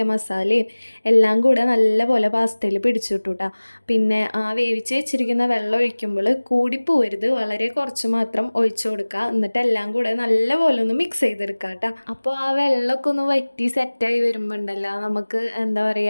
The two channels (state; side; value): inverted; both; correlation -1.00